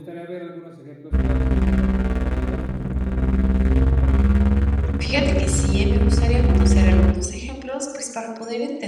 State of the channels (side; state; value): both; identical; correlation 1.00